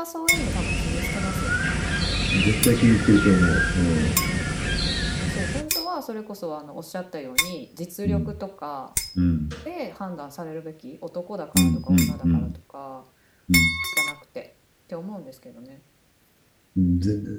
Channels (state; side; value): identical; both; correlation 1.00